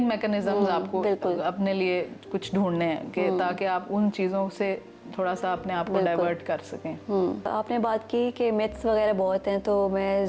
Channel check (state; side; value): identical; both; correlation 1.00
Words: मैकेनिज्म्स आपको अपने लिए कुछ ढूंढने हैं कि ताकि आप उन चीज़ों से थोड़ा सा अपने आप को डाइवर्ट कर सकें। आपने बात की कि मिथ्स वगैरह बहुत हैं, तो मैं